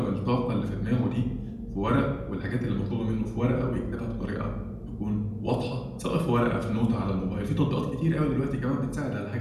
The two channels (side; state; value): both; identical; correlation 1.00